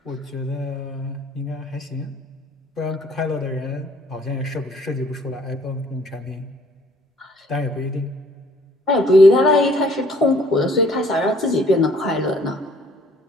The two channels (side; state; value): both; normal; correlation 0.59